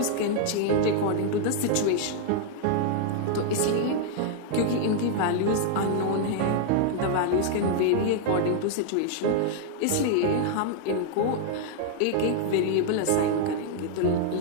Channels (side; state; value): both; different; correlation 0.00